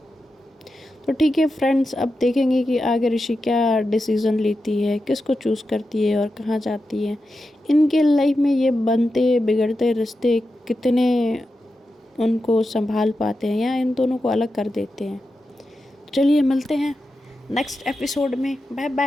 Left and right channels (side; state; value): both; normal; correlation 0.90